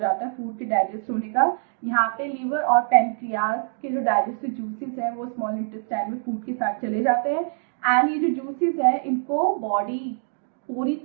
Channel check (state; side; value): silent; left; digital silence